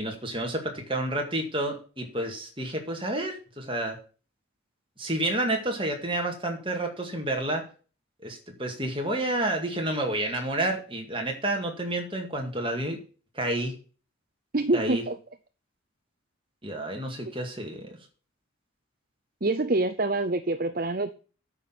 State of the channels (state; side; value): normal; both; correlation 0.18